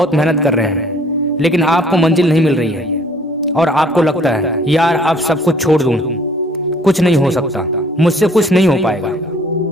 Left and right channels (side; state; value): both; normal; correlation 0.57